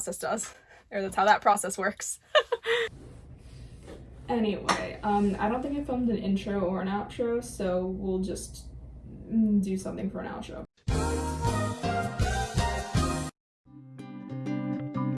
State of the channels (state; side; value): identical; both; correlation 1.00